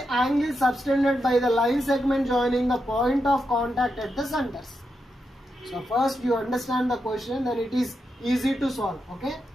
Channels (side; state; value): both; normal; correlation 0.85